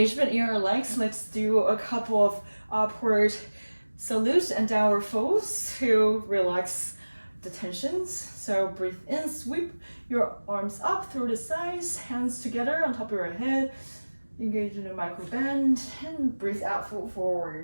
in your legs, let's do a couple of upward salutes and downward folds to relax the tensions. So breathe in, sweep your arms up through the sides, hands together on top of your head, engage in a micro bend, and breathe out, fold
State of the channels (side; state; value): both; inverted; correlation -1.00